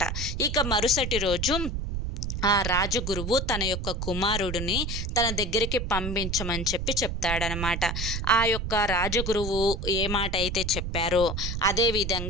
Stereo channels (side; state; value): right; noise; rumble, 3 dB below the sound